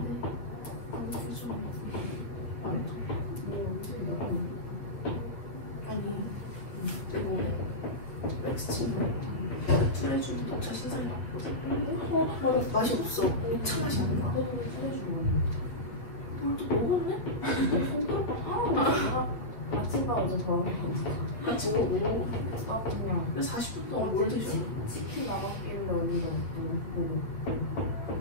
트레주도 녹차 신상이 나왔거든. 맛이 없어. 녹차 맛이 안 나. 같이 먹고. 아 그냥 40분 동안 뭘 드셨나? 치킨 나갔길래 우리가 먹고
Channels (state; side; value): late; right; 8.7 ms